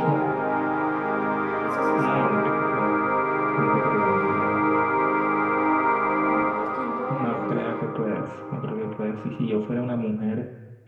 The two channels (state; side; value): identical; both; correlation 1.00